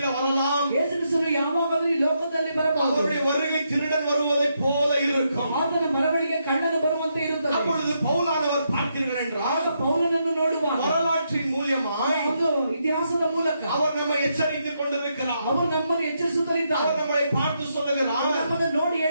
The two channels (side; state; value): both; inverted; correlation -0.79